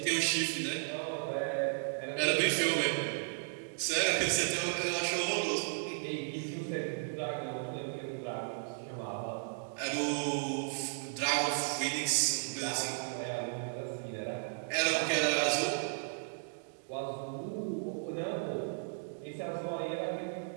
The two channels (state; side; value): silent; left; digital silence